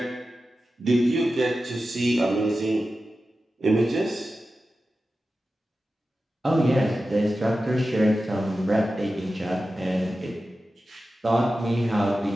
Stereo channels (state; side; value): normal; both; correlation 0.93